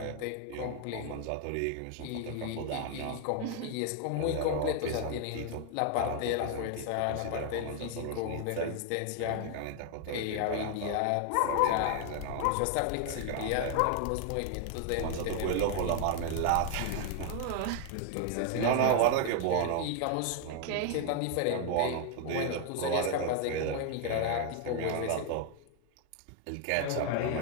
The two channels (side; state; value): both; different; correlation 0.00